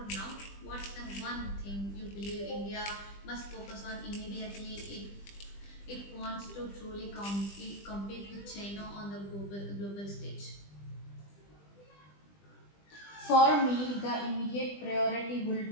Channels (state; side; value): late; right; 20 ms